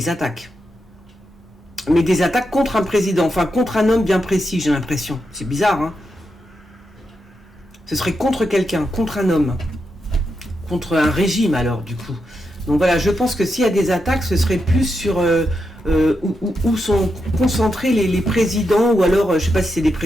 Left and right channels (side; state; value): both; normal; correlation 0.85